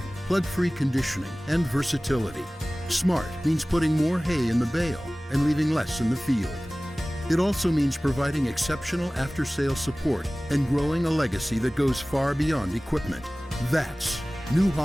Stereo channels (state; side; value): normal; both; correlation 0.98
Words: plug-free conditioning, and versatility. Smart means putting more hay in the bale and leaving less in the field. It also means providing exceptional after-sales support and growing a legacy that goes far beyond equipment. That's New